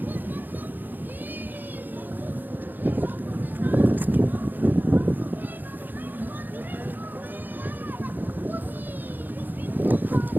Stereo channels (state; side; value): late; left; 0.088 ms